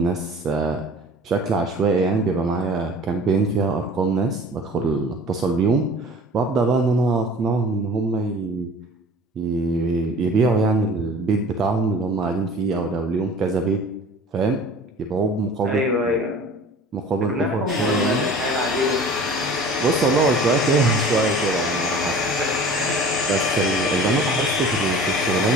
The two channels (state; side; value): normal; both; correlation 0.44